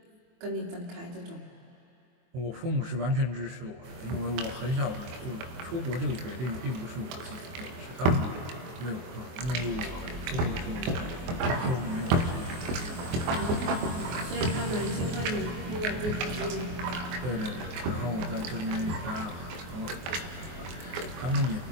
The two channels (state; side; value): late; left; 24 ms